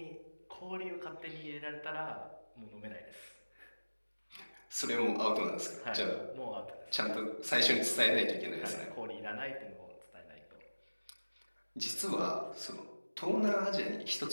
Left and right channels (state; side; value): inverted; both; correlation -1.00